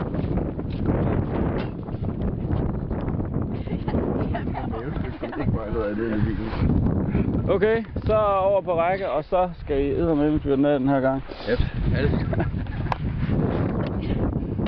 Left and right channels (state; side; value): identical; both; correlation 1.00